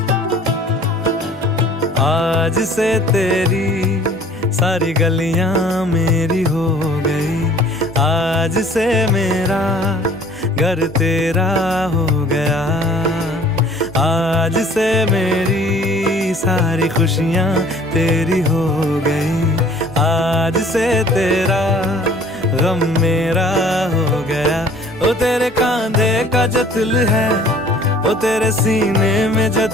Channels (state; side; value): normal; both; correlation 0.52